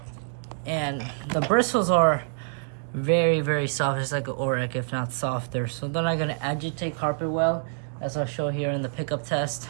And the bristles are very, very soft. It's like an Orec, if not softer. So they're not going to agitate carpet well, as I'll show here in the pickup test.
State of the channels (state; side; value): silent; left; digital silence